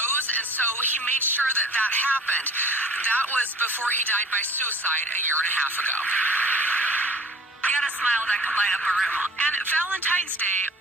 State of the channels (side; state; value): both; normal; correlation 0.47